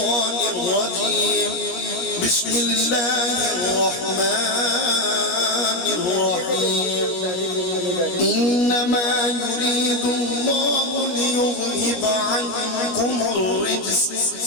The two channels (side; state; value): right; late; 17 ms